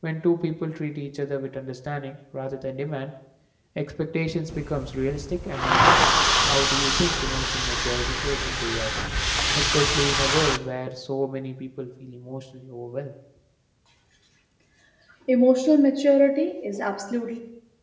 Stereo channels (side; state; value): both; identical; correlation 1.00